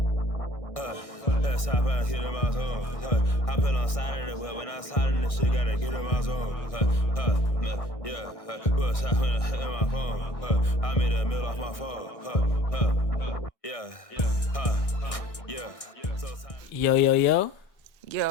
Let's hop out, hit in my zone. Hop in on side of the wheel. When I slide in this shit, gotta get in my zone. Yeah, what's happening in my phone? I made a meal off my phone. Yeah.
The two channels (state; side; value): late; right; 1.6 ms